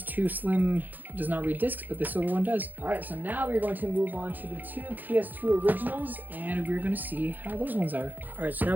Slim does not read discs, but the silver one does. All right, so now we're going to move on to the two PS2 originals, and we're going to see how those ones are. All right, so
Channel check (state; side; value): late; left; 0.085 ms